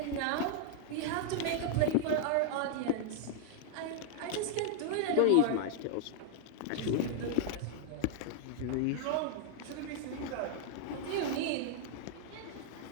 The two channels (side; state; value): both; different; correlation 0.00